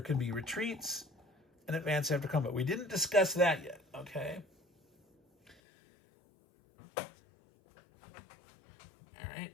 can be retreats and advance after combat. We didn't discuss that yet, okay? All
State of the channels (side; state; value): right; drops out; at 5.6 s